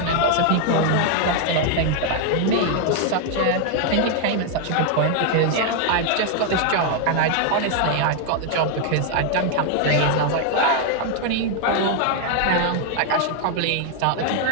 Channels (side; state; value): both; different; correlation 0.00